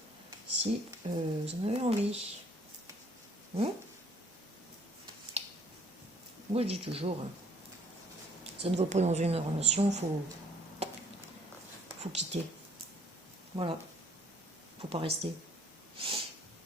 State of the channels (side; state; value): both; normal; correlation 0.61